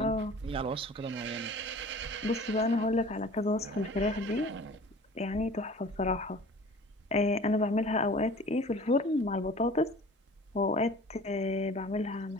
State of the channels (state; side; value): normal; both; correlation 0.44